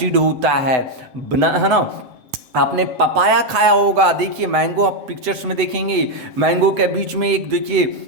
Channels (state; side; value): late; left; 8.0 ms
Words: होता है ना। आपने पपाया खाया होगा। देखिए मैंगो आप पिक्चर्स में देखेंगे, मैंगो के बीच में एक देखिए